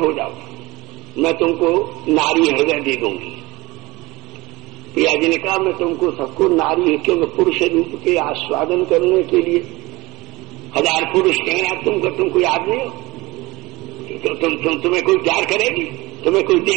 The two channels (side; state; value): left; quieter; 21.6 dB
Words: हो जाओ, मैं तुमको नारी हृदय दे दूंगी। प्रिया जी ने कहा मैं तुमको सबको नारी है, क्योंकि पुरुष रूप के आस्वादन करने के लिए हजार पुरुष कहना तुमको याद नहीं हो तो तुम्हें कोई प्यार करेगी, तुम्हें कोई